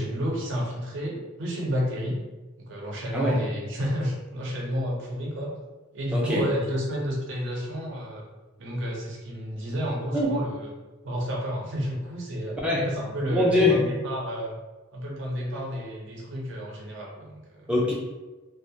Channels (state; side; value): normal; both; correlation 0.58